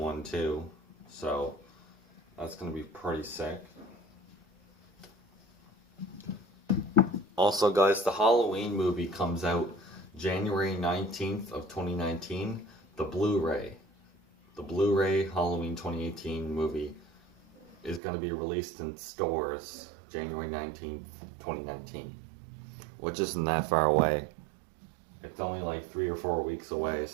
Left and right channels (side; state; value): left; drops out; at 18.0 s